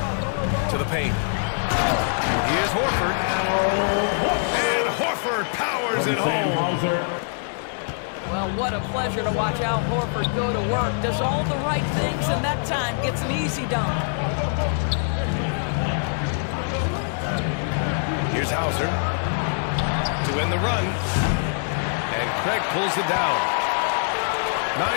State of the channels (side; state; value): right; silent; digital silence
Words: To the paint. Here's Horford. And Horford powers it home. Well, what a pleasure to watch Al Horford go to work. Does all the right things, and that time gets an easy dunk. Here's Hauser. To end the run. And Craig pulls it down. 9